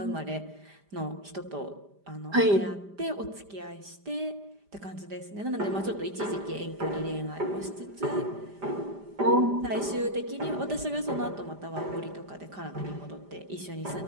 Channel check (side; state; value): left; late; 5.0 ms